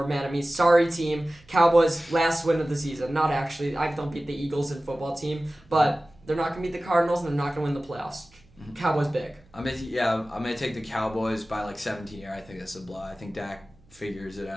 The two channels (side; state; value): right; noise; hum, 29 dB below the sound